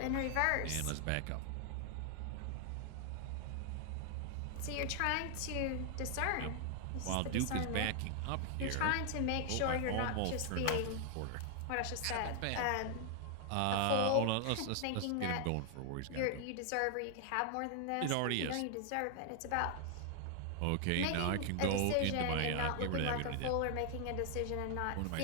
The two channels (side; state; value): both; different; correlation 0.00